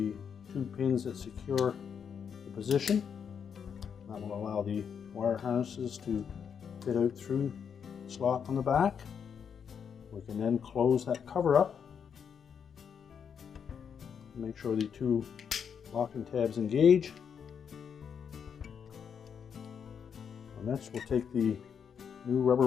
2 pins that secure the position. That will allow the wire harnesses to fit out through the slot on the back. We can then close that cover up. Make sure the 2 locking tabs engage. And next we'll take the new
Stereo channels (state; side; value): quieter; right; 7.3 dB